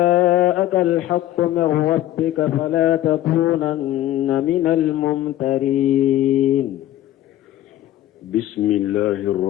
الحق من ربك فلا تكونن من الممترين. بسم الله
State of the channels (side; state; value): right; quieter; 13.7 dB